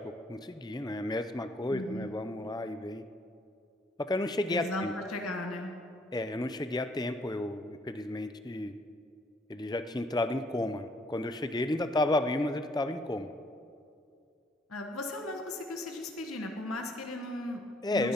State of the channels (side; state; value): both; normal; correlation 0.65